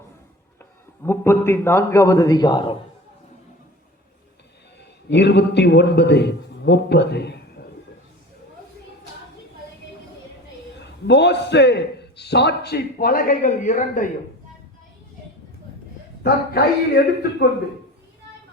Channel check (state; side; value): normal; both; correlation 0.38